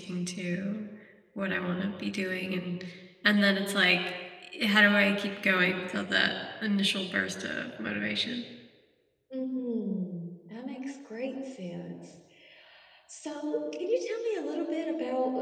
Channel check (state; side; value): identical; both; correlation 1.00